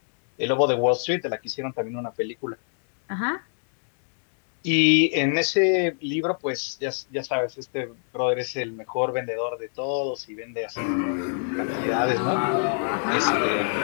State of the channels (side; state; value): right; silent; 61 dB below the other